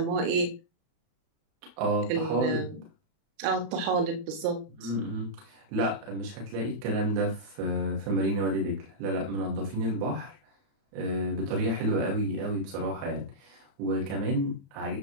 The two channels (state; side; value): late; left; 31 ms